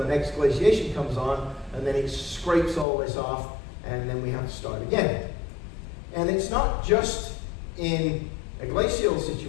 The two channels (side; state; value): right; drops out; at 2.9 s